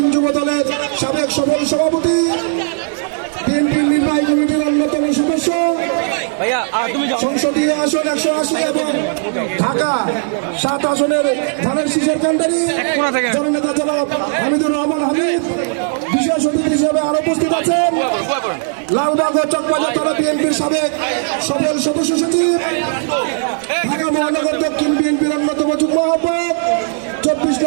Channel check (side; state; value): left; silent; 69 dB below the other